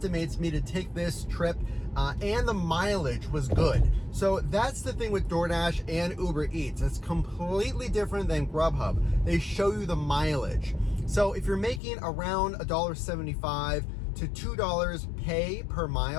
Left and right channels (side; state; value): right; drops out; at 11.8 s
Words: me to take this trip and the mileage was good. So that's the thing with DoorDash and Uber Eats. It's completely different than Grubhub. They show you the mileage. So if you're making around $1.75 to $2 pay per